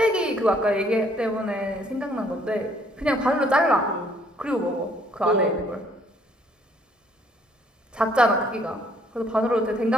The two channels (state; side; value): normal; both; correlation 0.64